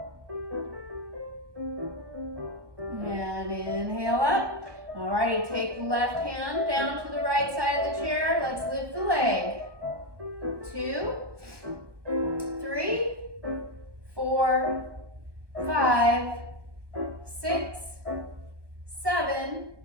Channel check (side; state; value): left; late; 1.2 ms